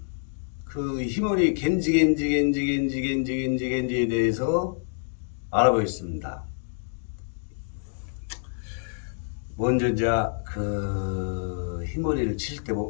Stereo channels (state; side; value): silent; right; digital silence